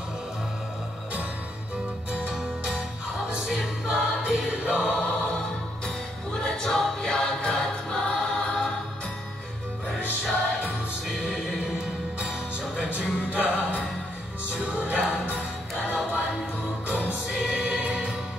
How is it Babylon? Una Jopia Katma, Persia Muslim, Joga Judah, Sudan, Kalawan Hukum Sin,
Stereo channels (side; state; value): both; normal; correlation 0.75